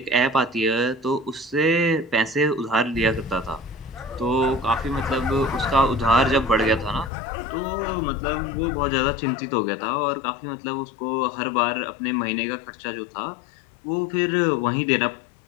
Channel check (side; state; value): right; drops out; at 7.1 s